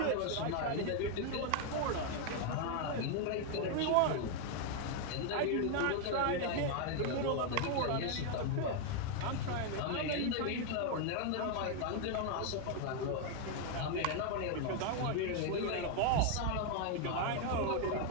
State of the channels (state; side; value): different; both; correlation 0.01